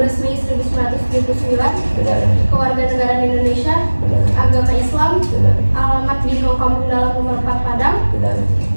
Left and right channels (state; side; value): inverted; both; correlation -1.00